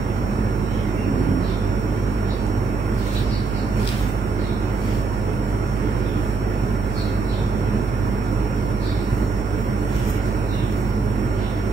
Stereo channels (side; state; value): left; quieter; 4.3 dB